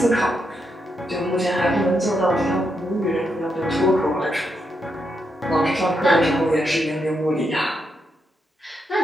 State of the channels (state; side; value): normal; both; correlation 0.82